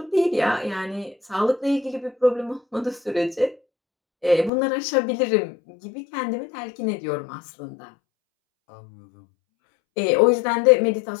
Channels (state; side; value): drops out; right; at 4.5 s